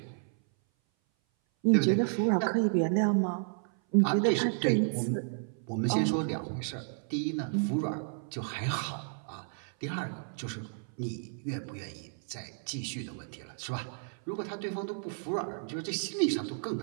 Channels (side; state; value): left; silent; 56 dB below the other